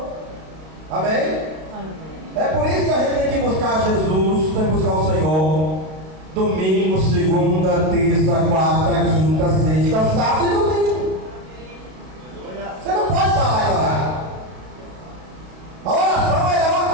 Amém? Amém. É por isso que a gente tem que buscar Jesus, tem que buscar o Senhor. Domingo, segunda, terça, quarta, quinta, sexta, sábado e domingo. Você não pode parar de orar. A oração é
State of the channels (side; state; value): left; late; 32 ms